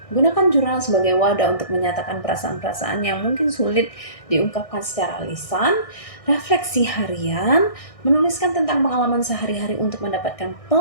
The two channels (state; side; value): late; right; 1.6 ms